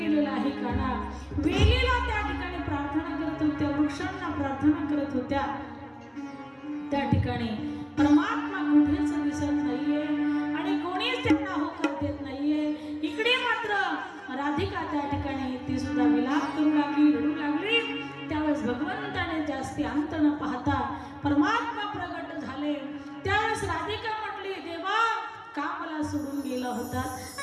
आहे काना. वेलीला त्या ठिकाणी प्रार्थना करत होत्या, वृक्षांना प्रार्थना करत होत्या. त्या ठिकाणी परमात्मा कुठेच दिसत नाहीये आणि कोणीच त्यांना होकार देत नाहीये. इकडे मात्र राधिका त्या ठिकाणी ती सुद्धा विलाप करू लागली, रडू लागली. त्यावेळेस भगवंताने जास्ती अंत न पाहता परमात्मा प्रगट झाले. त्यावेळेस राधिका म्हटली, देवा का मला सोडून गेला होता.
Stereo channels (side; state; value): both; identical; correlation 1.00